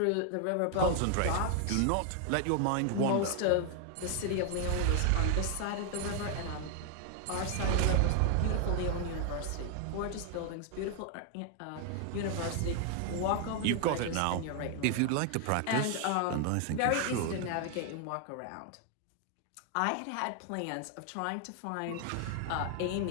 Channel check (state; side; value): different; both; correlation 0.00